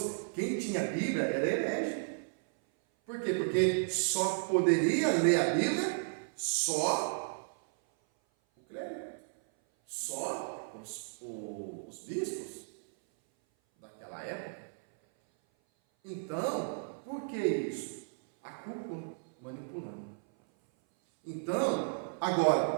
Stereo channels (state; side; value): silent; left; 55 dB below the other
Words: Quem tinha Bíblia era herege. Por quê? Porque só poderia ler a Bíblia só o clérigo. Só os bispos daquela época. Então, por que isso? A cúpula manipulando. Então,